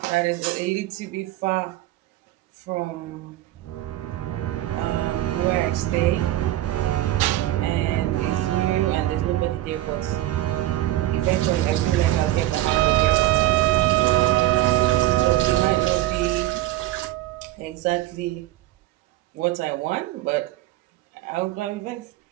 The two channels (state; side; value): quieter; left; 14.9 dB